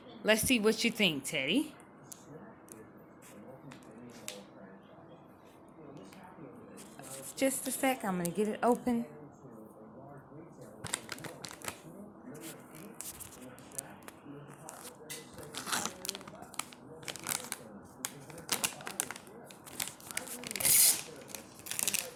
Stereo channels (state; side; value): identical; both; correlation 1.00